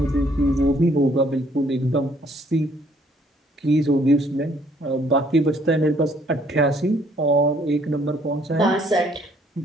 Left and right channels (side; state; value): both; normal; correlation 0.64